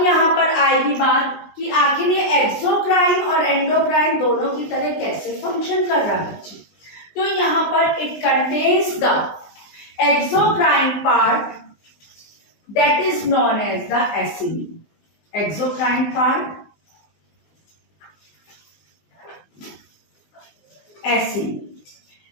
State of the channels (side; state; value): right; late; 19 ms